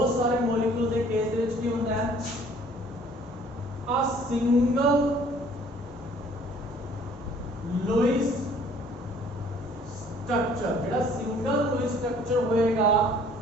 सारे मॉलिक्यूल के केस दे विच की होंदा है, a single लुईस स्ट्रक्चर, जेड़ा सिंगल लुईस स्ट्रक्चर होएगा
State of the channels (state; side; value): normal; both; correlation 0.56